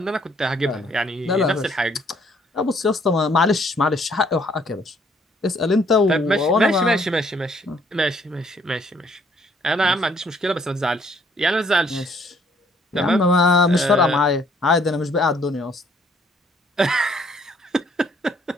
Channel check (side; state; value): both; normal; correlation 0.64